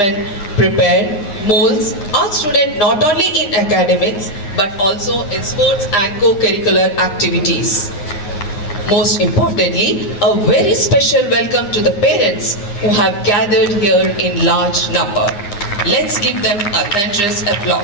prepare, molds our students not only in academics but also in sports and co-curricular activities. Most importantly, a very special welcome to the parents who have gathered here in large number. Let's give them a thunderous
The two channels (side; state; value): right; late; 9.9 ms